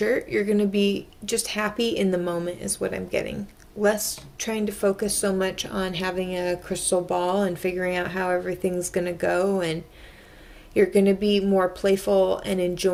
you're going to be just happy in the moment is what I'm getting. Less trying to focus so much on having a crystal ball and figuring out how everything's going to go, and you're going to be more playful and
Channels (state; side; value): identical; both; correlation 1.00